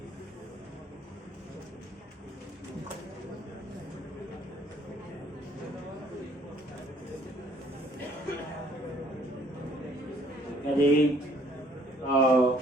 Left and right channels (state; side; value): normal; both; correlation 0.61